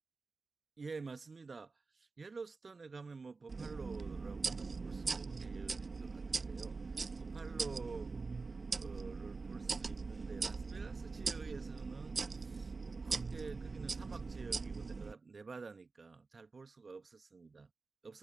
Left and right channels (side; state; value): left; quieter; 4.1 dB